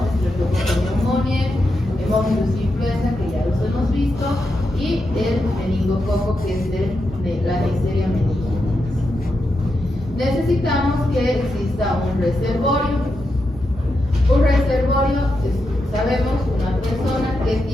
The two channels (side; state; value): both; normal; correlation 0.86